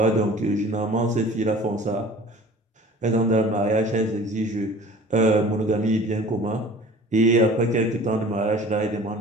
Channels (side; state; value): both; normal; correlation 0.45